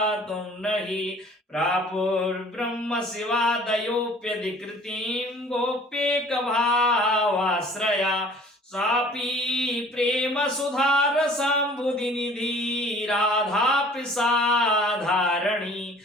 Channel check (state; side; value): normal; both; correlation 0.50